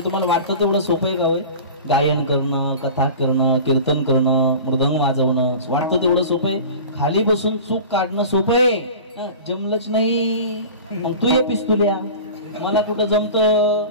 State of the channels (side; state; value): both; inverted; correlation -0.36